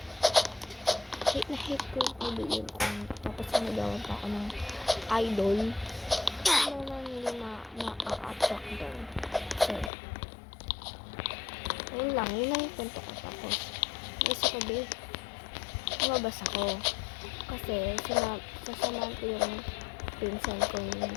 Hate na hate ko yung pabigyan ko. Tapos inag-aawan pa ako ng idol. Ano naman hindi ma-attract doon. So, yun lang yung kwento ko. Tapos, naisip ko, lumabas ako. Kasi, sasamahan ko yung pinsan ko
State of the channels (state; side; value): drops out; right; at 9.9 s